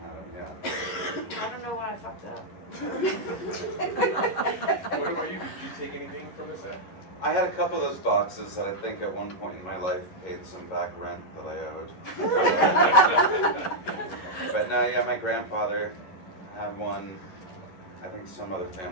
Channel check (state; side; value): late; right; 11 ms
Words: them. Yeah. I don't know why I fucked up. What about you? Did you take anything from the set? I had a couple of those boxes that I think at one point in my life paid some back rent that I owed. But no, yeah, my grandfather had one. I think some other